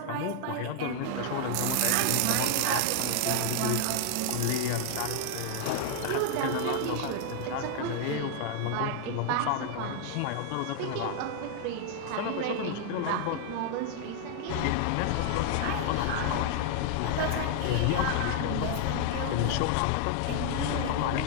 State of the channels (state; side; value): different; both; correlation 0.00